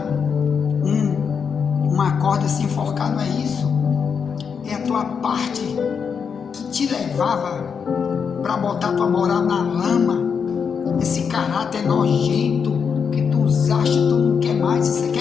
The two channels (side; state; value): right; quieter; 6.4 dB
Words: uma corda e se enforcar, não é isso. É a tua parte que te levava para botar tua moral na lama, esse caráter nojento que tu usaste, tu não quer mais, você